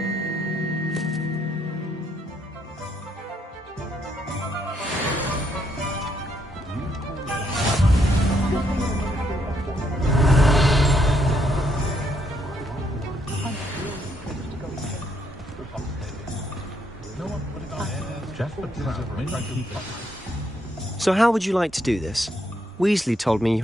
So how would you like to do this? Weasley told me you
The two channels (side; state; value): both; normal; correlation 0.74